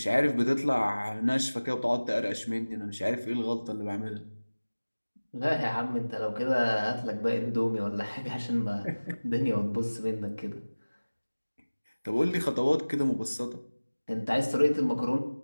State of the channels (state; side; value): inverted; both; correlation -1.00